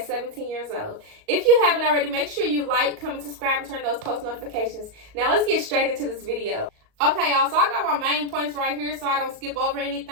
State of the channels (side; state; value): left; late; 38 ms